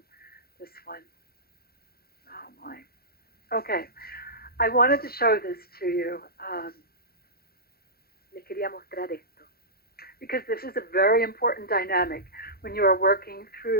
Oh, my. Okay. I wanted to show this to you. Les quería mostrar esto. Because this is a very important dynamic when you are working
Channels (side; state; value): right; late; 0.44 ms